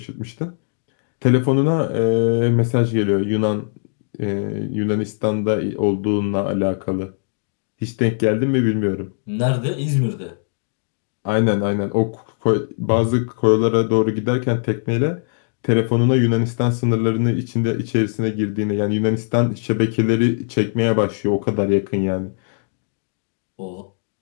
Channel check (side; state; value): right; silent; digital silence